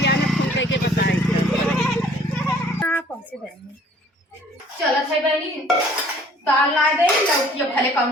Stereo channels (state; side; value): normal; both; correlation 0.55